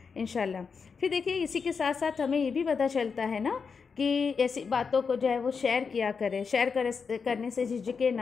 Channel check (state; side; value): quieter; right; 5.6 dB